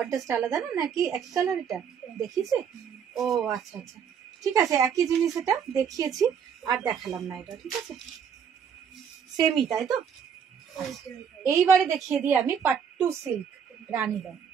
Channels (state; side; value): quieter; left; 7.5 dB